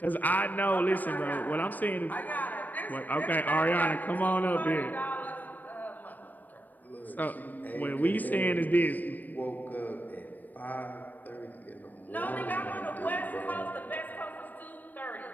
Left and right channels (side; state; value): right; late; 0.085 ms